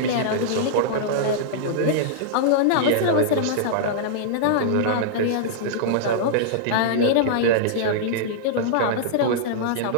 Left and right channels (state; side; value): different; both; correlation -0.02